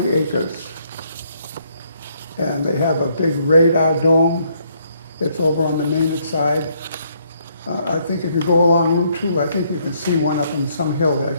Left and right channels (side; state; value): both; inverted; correlation -0.70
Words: acres. And they have a big radar dome. It's over on the Maynard side. I think if you go along Route 2, I think you can see one up in some hill there. I